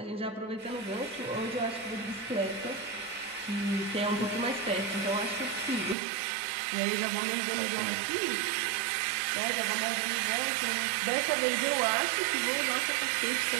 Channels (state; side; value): drops out; left; at 6.0 s